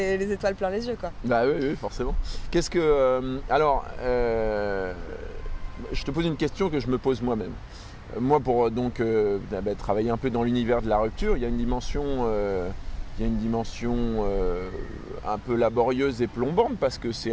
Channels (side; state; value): both; identical; correlation 1.00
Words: les étoiles plein les yeux quoi. Bah oui, forcément. Qu'est-ce que... je te pose une question que je me pose moi-même. Moi, pour travailler un peu dans l'univers de la rupture, il y a une dimension, un peu laborieuse et plombante parce que c'est